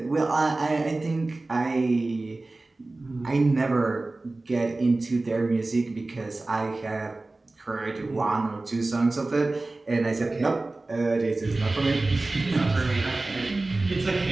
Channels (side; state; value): left; quieter; 3.1 dB